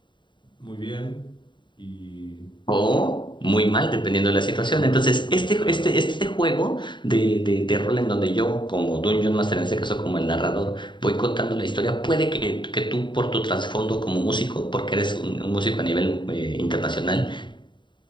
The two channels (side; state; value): right; late; 0.23 ms